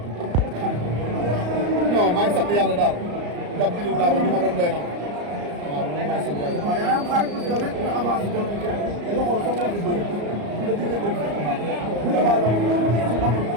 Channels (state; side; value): late; left; 34 ms